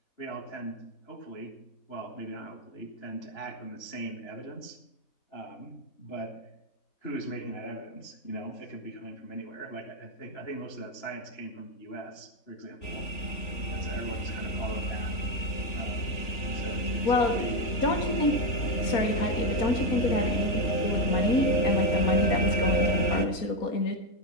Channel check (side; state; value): right; late; 3.5 ms